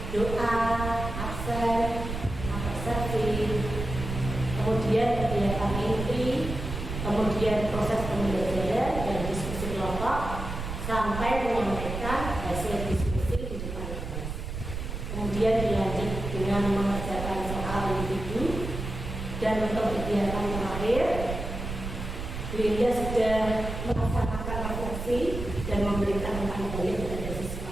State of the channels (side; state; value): right; noise; rumble, 6 dB below the sound